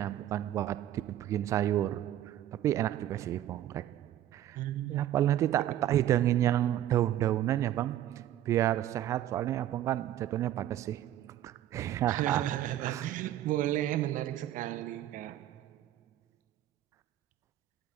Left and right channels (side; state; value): left; quieter; 12.4 dB